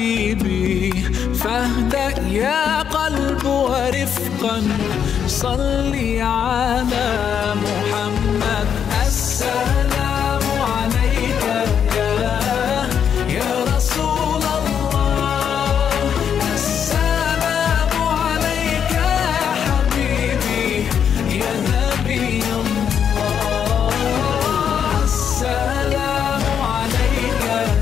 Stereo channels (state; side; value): quieter; right; 8.1 dB